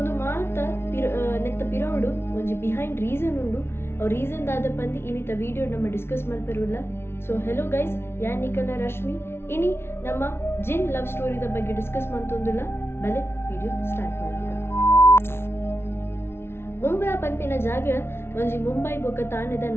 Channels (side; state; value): right; late; 0.12 ms